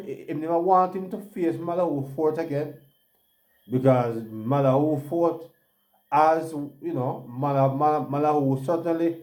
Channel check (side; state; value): both; identical; correlation 1.00